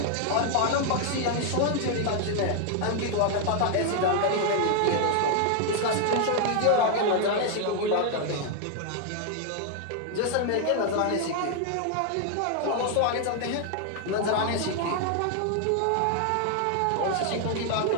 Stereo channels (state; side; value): different; both; correlation 0.00